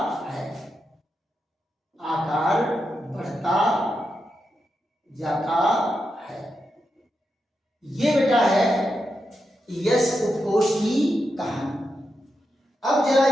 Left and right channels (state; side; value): normal; both; correlation 0.86